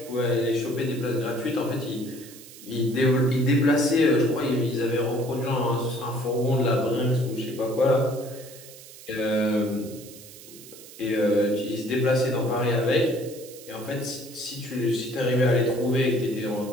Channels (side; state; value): right; noise; hiss, 18 dB below the sound